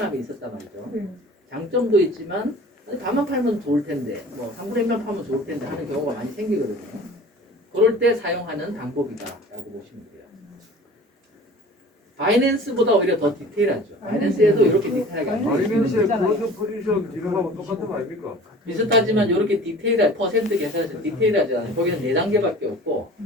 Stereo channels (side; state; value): both; normal; correlation 0.44